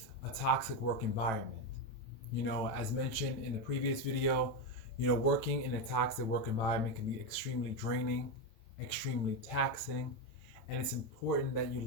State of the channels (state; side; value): late; right; 9.1 ms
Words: a toxic work environment. As mentioned in the previous video, working in a toxic work environment can be extremely draining, extremely taxing, and it's important that you